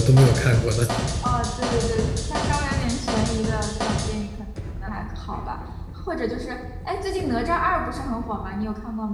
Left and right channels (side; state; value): both; identical; correlation 1.00